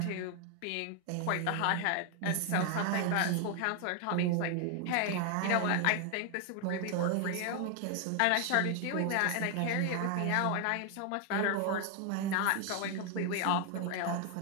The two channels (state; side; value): different; both; correlation 0.00